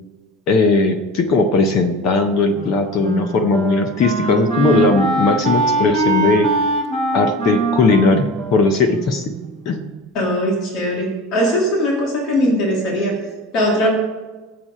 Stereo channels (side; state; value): both; normal; correlation 0.35